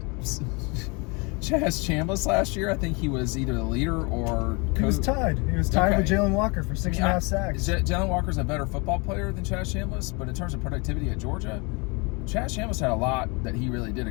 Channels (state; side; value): quieter; right; 29.8 dB